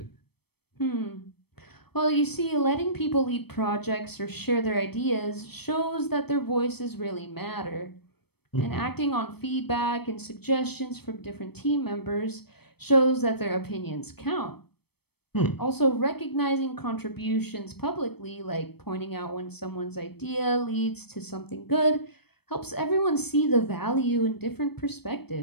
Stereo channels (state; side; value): late; right; 0.97 ms